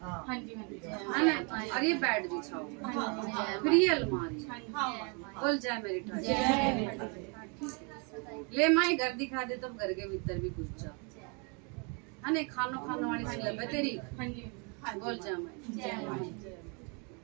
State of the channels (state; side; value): quieter; left; 34.7 dB